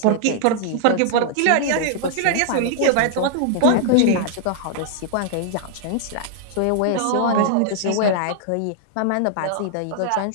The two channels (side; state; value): both; different; correlation -0.01